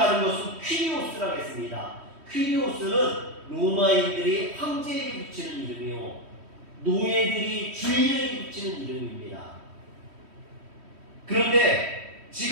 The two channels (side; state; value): left; late; 3.1 ms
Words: 것은 퀴리오스라고 했습니다. 퀴리오스는 로마인들이 황제에게 붙이는 이름이요, 노예들이 주인에게 붙이는 이름입니다. 그런데